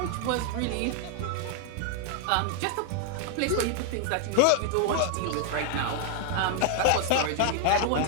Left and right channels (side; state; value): both; different; correlation 0.00